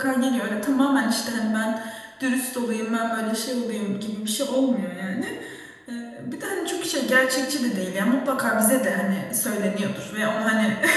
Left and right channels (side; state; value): both; identical; correlation 1.00